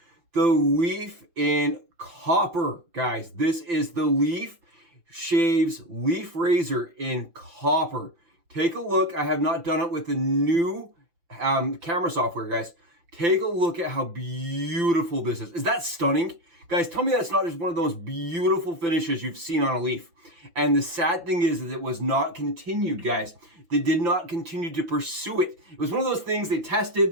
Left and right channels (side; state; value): left; late; 5.9 ms